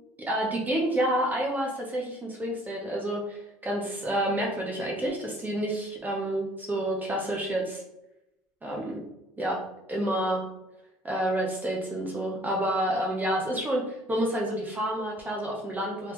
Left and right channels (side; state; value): both; normal; correlation 0.58